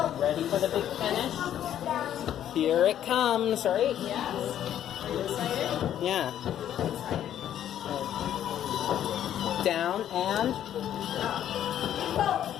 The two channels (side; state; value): right; quieter; 10.8 dB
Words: Ready for the big finish? Here it comes, right? Yes. Are you excited? Yeah. Down and